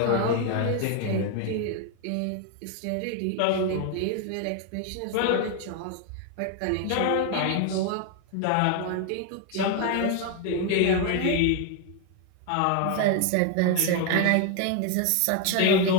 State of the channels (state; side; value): different; both; correlation 0.01